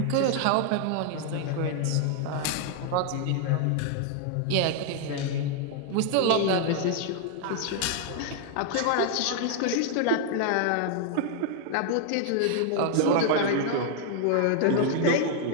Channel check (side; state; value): both; different; correlation 0.00